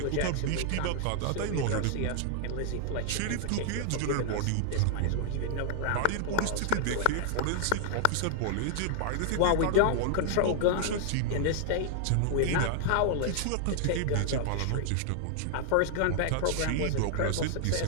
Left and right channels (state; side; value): different; both; correlation -0.01